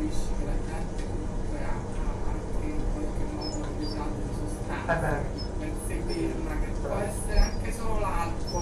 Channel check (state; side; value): identical; both; correlation 1.00